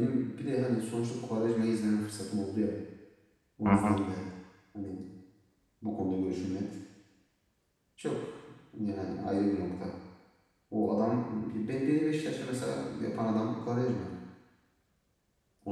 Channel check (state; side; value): identical; both; correlation 1.00